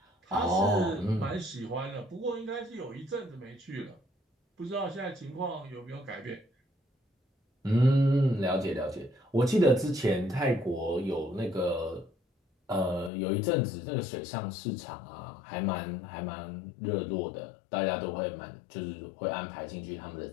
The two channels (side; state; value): right; drops out; at 13.1 s